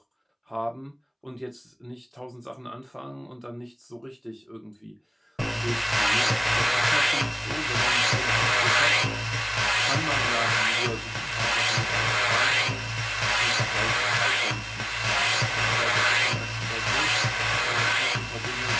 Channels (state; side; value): identical; both; correlation 1.00